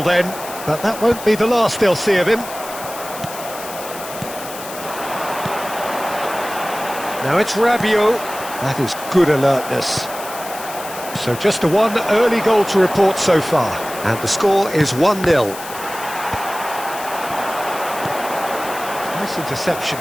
then, but that won't be the last they'll see of him. Now it's Rabiot. That is good alertness. So just a one early goal to report so far. And the score is 1-0. Nice interception.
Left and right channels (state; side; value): noise; left; hiss, 12 dB below the sound